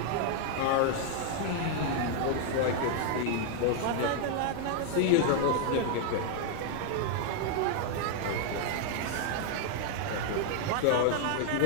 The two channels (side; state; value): both; different; correlation 0.00